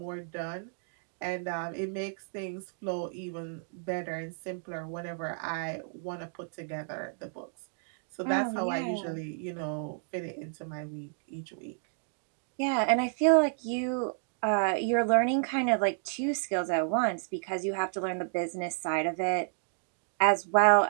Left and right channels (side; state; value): left; silent; digital silence